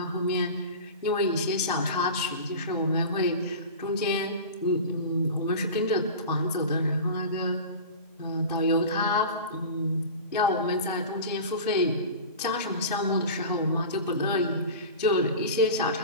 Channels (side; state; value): both; inverted; correlation -0.32